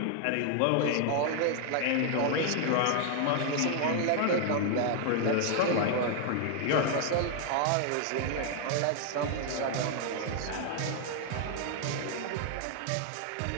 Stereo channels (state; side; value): different; both; correlation 0.00